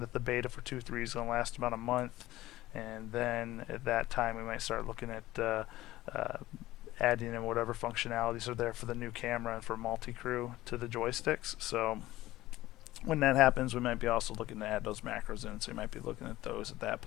the beta for 2.3 is going to last about a month, and then at that time we might start looking at adding in whatever functionalities are there for the new camera and for multi-crew to the joysticks. So when that happens, we might be also looking to add those macros in, so you might be looking at those at that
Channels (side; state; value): right; quieter; 16.6 dB